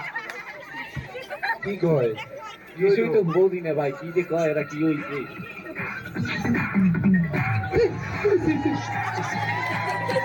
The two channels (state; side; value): identical; both; correlation 1.00